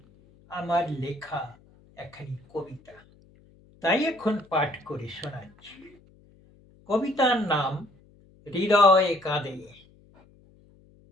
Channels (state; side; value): noise; left; hum, 28 dB below the sound